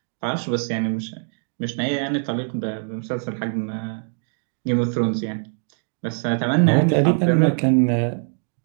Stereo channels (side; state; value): left; silent; 64 dB below the other